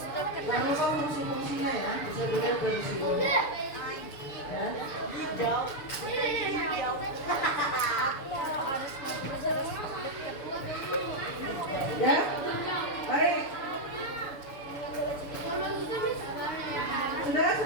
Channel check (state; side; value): late; right; 6.8 ms